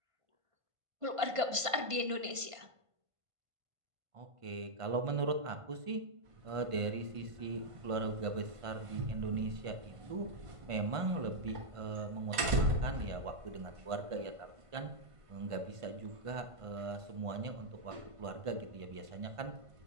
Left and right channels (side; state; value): left; late; 1.5 ms